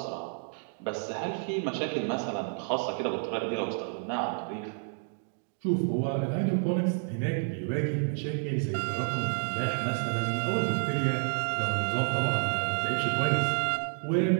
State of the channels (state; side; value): silent; left; 58 dB below the other